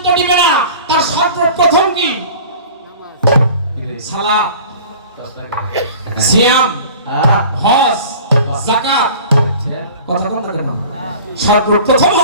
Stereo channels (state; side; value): inverted; both; correlation -0.43